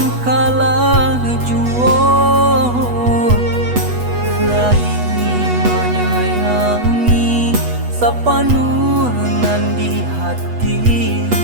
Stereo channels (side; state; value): left; late; 8.2 ms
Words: kalah juo laini menyayangi sapanunan di hati